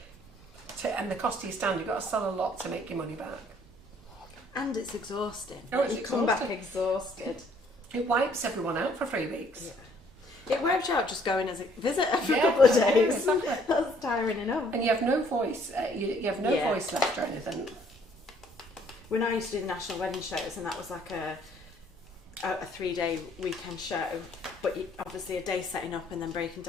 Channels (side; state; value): both; normal; correlation 0.62